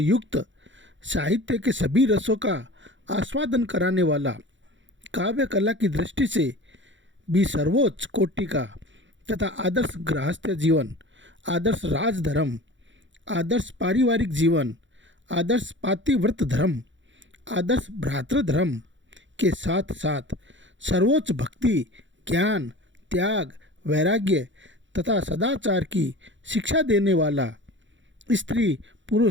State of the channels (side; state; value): left; late; 0.54 ms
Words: साहित्य के सभी रसों का आस्वादन कराने वाला, काव्य कला की दृष्टि से भी सर्वोच्च कोटि का तथा आदर्श गृहस्थ जीवन, आदर्श राजधर्म, आदर्श पारिवारिक जीवन, आदर्श पातिव्रत धर्म, आदर्श भ्रातृधर्म के साथ साथ सर्वोच्च भक्ति, ज्ञान, त्याग, वैराग्य तथा सदाचार की शिक्षा देने वाला, स्त्री,